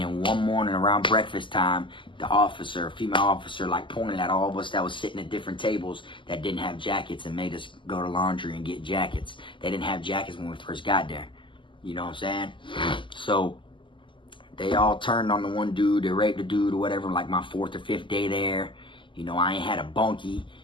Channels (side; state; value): right; late; 0.24 ms